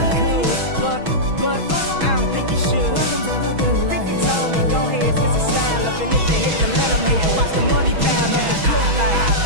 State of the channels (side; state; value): left; late; 6.2 ms